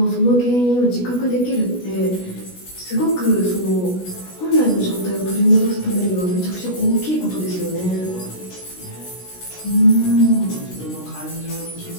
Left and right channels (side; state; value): right; late; 16 ms